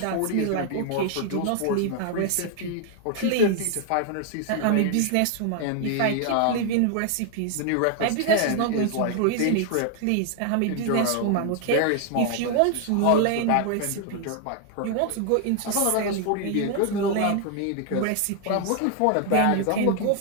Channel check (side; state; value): both; different; correlation 0.00